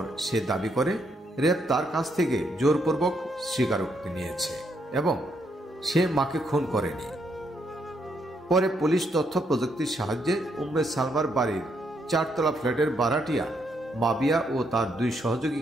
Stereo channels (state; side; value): normal; both; correlation 0.76